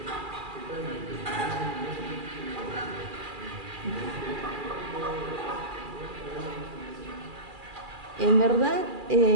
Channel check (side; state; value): left; late; 2.4 ms